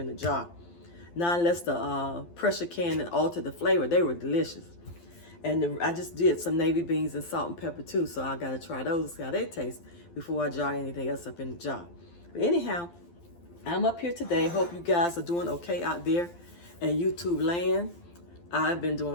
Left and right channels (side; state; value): right; late; 12 ms